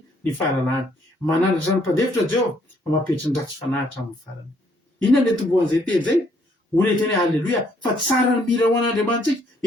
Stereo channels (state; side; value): normal; both; correlation 0.67